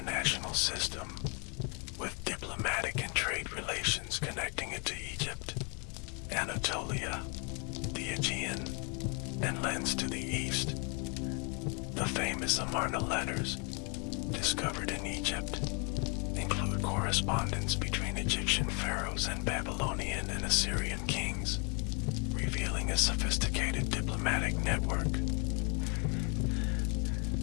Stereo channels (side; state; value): right; quieter; 35.0 dB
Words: system, with diplomatic and trade relations connecting it to Egypt, Anatolia, the Aegean, and lands to the east. The famous Amarna letters, discovered in Egypt, include correspondence between Egyptian pharaohs and Babylonian and Assyrian kings, revealing a sophisticated diplomatic network.